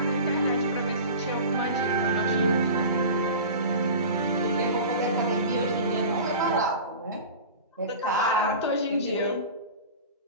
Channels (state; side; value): inverted; both; correlation -0.34